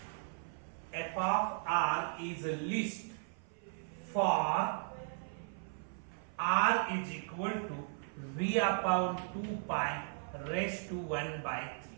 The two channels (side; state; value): left; silent; 53 dB below the other